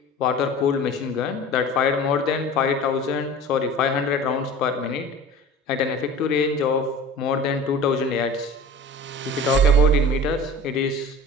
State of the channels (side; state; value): both; normal; correlation 0.39